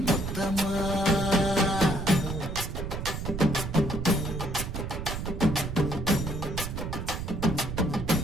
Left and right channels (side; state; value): right; noise; rumble, 5 dB below the sound